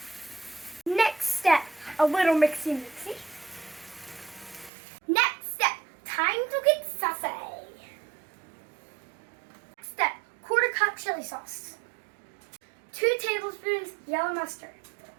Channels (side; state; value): left; drops out; at 4.7 s